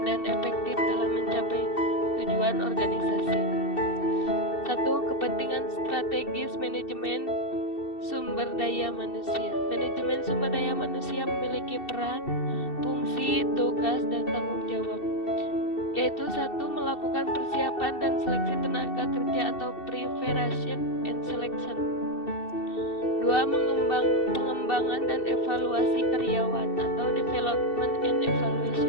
dan efektif dalam mencapai tujuan organisasi. 1. Kepentingan strategis manajemen sumber daya manusia. Manajemen sumber daya manusia memiliki peran, fungsi, tugas, dan tanggung jawab, yaitu 1. Melakukan persiapan dan seleksi tenaga kerja atau preparation and selection. 2. Pengembangan dan evaluasi karyawan atau development and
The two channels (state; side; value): late; right; 2.7 ms